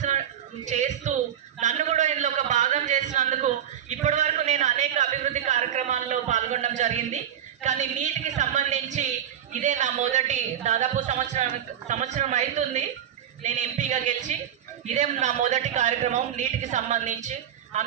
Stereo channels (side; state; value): left; quieter; 10.0 dB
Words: చేస్తూ నన్ను కూడా ఇందులో ఒక భాగం చేసినందుకు ఇప్పటి వరకు నేను అనేక అభివృద్ధి కార్యక్రమాల్లో పాల్గొనడం జరిగింది. కానీ నీటికి సంబంధించి ఇదే నా మొదటి, దాదాపు సంవత్సరం అవుతుంది నేను ఎంపీగా గెలిచి, ఇదే నా మొదటి కార్యక్రమం నీటికి సంబంధించి.